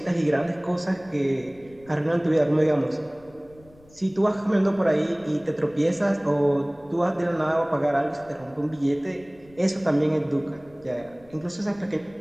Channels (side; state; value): left; noise; rumble, 26 dB below the sound